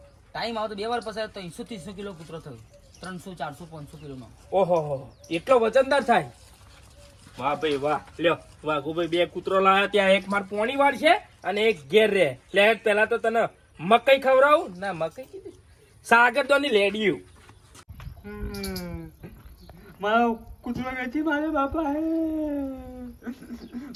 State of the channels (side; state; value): both; identical; correlation 1.00